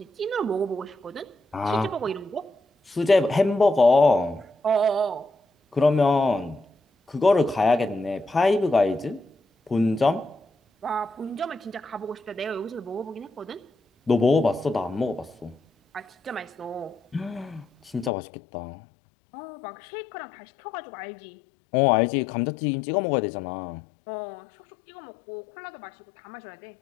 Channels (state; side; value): drops out; right; at 18.1 s